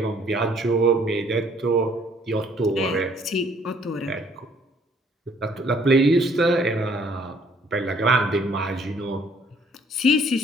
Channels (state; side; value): normal; both; correlation 0.61